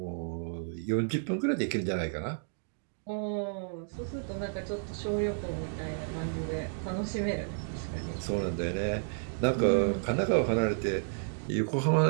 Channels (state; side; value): silent; left; digital silence